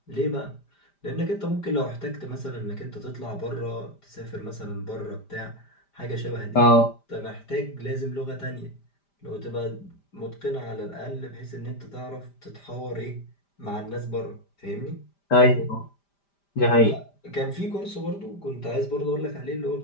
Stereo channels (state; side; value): late; right; 5.0 ms